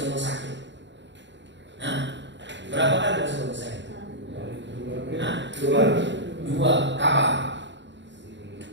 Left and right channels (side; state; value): left; late; 0.53 ms